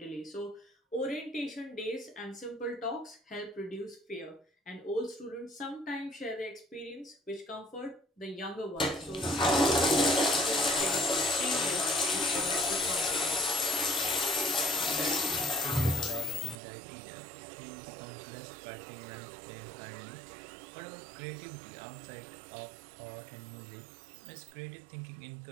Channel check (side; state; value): left; drops out; at 16.6 s